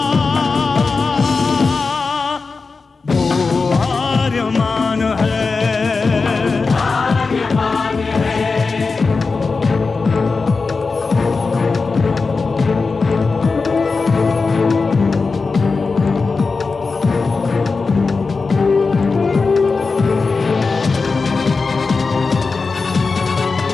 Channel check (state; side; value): quieter; right; 4.3 dB